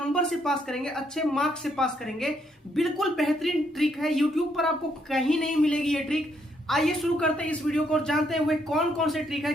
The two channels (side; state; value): both; normal; correlation 0.73